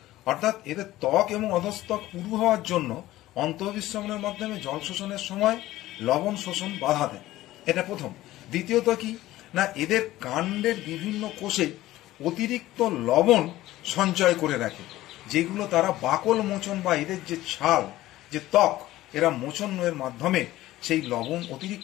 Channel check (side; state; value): right; quieter; 15.9 dB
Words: অর্থাৎ এদের ত্বক এবং অধস্তক পুরু হওয়ার জন্য অন্তঃবিশ্বমনের মাধ্যমে জল শোষণের সময় লবণ শোষণ বাধা দেয়। এটা প্রথম। দ্বিতীয়ত কি না এদের কাণ্ডের বিভিন্ন কোষে অতিরিক্ত লবণ সঞ্চয় করে রাখে, যেগুলো তারা বাকল মোচন বা এদের যে ছাল, যে ত্বক, এরা মোচনের মাধ্যমে সেই লবণ,